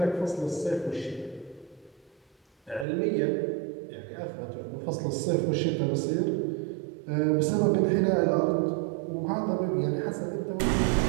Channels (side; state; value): left; drops out; at 2.9 s